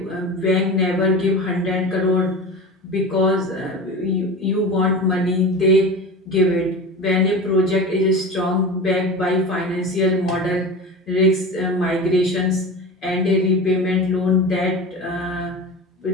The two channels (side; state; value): both; normal; correlation 0.30